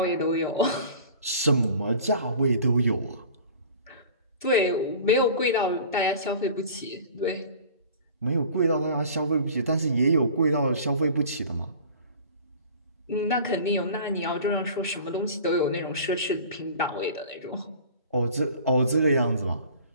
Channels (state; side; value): inverted; both; correlation -0.43